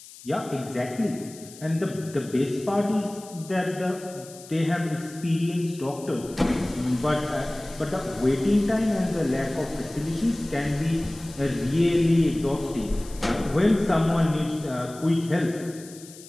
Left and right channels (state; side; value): noise; left; hiss, 18 dB below the sound